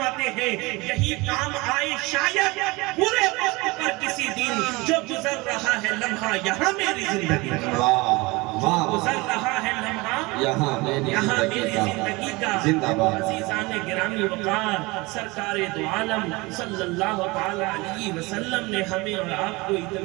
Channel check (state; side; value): quieter; left; 23.8 dB